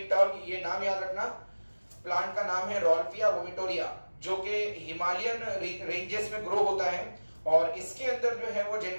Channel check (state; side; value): inverted; both; correlation -1.00